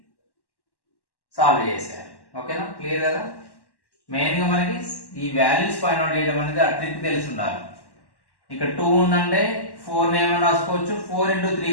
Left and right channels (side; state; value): right; late; 1.1 ms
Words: సాల్వ్ చేసేయాలి. ఓకేనా? క్లియర్ కదా? మెయిన్ గా మనకి ఈ వాల్యూస్ ఫైండ్ అవుట్ చేయడం అనేది ఆ ట్రిక్ తెలిసి ఉండాలి. ఇక్కడ 2 ఉందంటే 4 ఏమైనా రాసుకోవచ్చు, 4 into 3